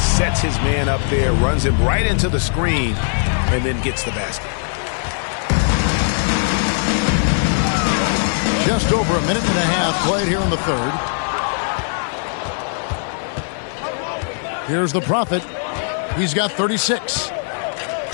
his man up there, runs him right into the screen, and then gets the basket. Just over a minute and a half played here in the third. Here's the Prophet. He's got 36.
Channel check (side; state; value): right; silent; 58 dB below the other